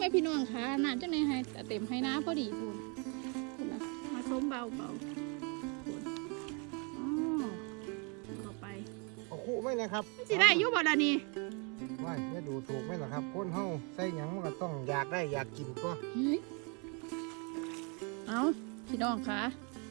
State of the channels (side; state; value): left; quieter; 34.5 dB